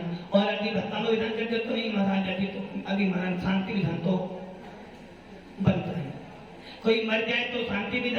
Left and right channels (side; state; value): both; identical; correlation 1.00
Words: और अभी भक्तानो विधान करते तो नहीं महाराज, अभी तो अभी महाराज शांति विधान तो बनता है। कोई मर जाए तो शांति